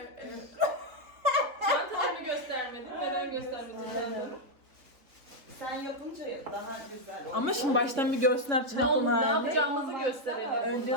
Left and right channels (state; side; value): late; left; 3.4 ms